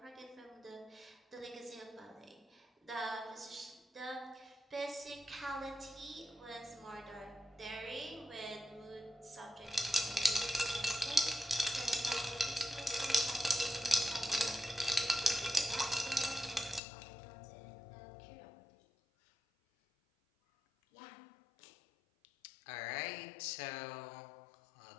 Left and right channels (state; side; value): drops out; right; at 16.8 s